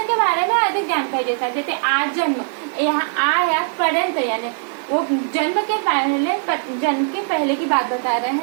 के बारे में अधिक जानकारी देता है। जैसे आज जन्म, यहाँ आ या पर्यंत, यानी वो जन्म के पहले की बात बता रहे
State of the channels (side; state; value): left; silent; digital silence